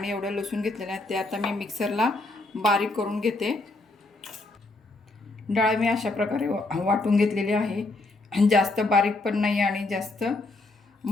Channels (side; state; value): right; quieter; 3.0 dB